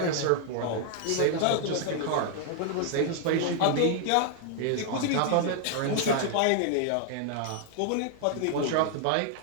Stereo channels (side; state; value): both; different; correlation 0.00